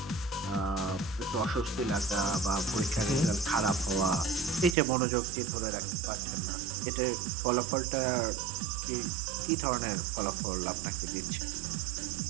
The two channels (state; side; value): drops out; left; at 4.8 s